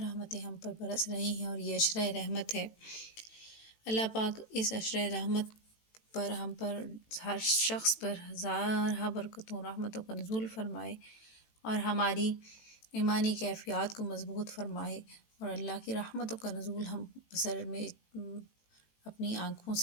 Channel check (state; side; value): late; right; 18 ms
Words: ہم پر برس رہی ہیں، اور یہ عشرہ رحمت ہے۔ اللہ پاک اس عشرہ رحمت پر ہم پر ہر شخص پر ہزارہ برکتوں رحمتوں کا نزول فرمائے، اور ہماری ایمانی کیفیات کو مضبوط فرمائے، اور اللہ کی رحمتوں کا نزول ہم بصر میں اپنی آنکھوں